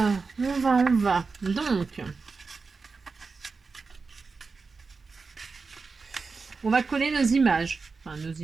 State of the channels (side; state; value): left; quieter; 4.5 dB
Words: on va. Donc, on va coller nos images. Enfin, nos